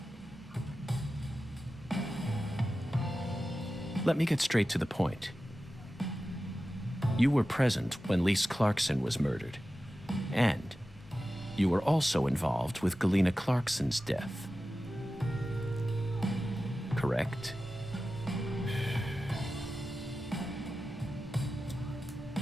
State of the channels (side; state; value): both; normal; correlation 0.94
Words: Let me get straight to the point. You were present when Lise Clarkson was murdered. And you were also involved with Galena Clarkson's death. Correct?